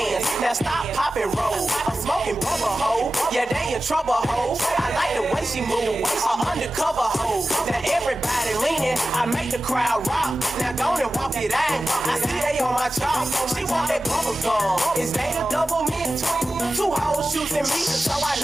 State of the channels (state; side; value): normal; both; correlation 0.95